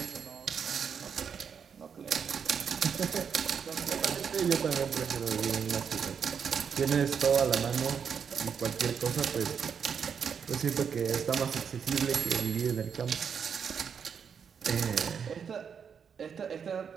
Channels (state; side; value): quieter; left; 6.9 dB